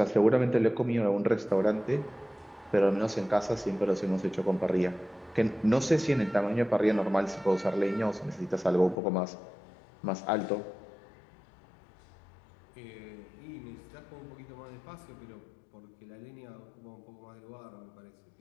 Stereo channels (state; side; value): drops out; right; at 9.0 s